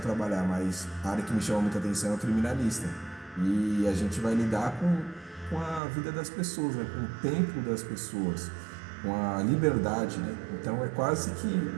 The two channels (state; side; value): drops out; left; at 5.8 s